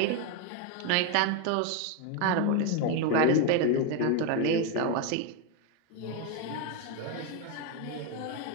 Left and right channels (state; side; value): different; both; correlation 0.02